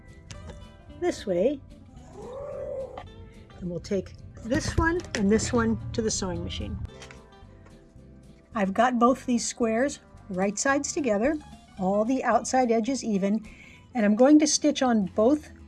this way, and we'll take this one and this one to the sewing machine. I've got both these squares right sides together, all the outside edges even, and I'm going to stitch on both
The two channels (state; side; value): identical; both; correlation 1.00